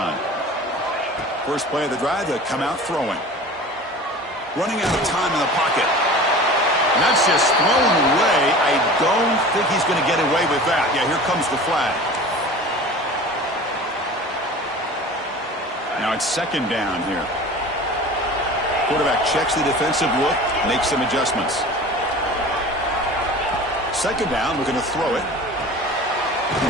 First play of the drive, they come out throwing. Running out of time in the pocket. And that's just thrown away. I don't think he's going to get away with that. Yeah, here comes the flag. Now it's second down here. Quarterback checks the defensive look, makes some adjustments. Second down, we're going to throw it.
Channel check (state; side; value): normal; both; correlation 0.39